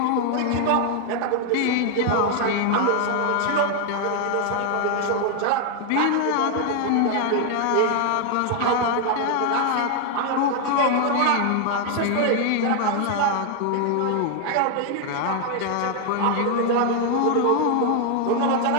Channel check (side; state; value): both; different; correlation 0.00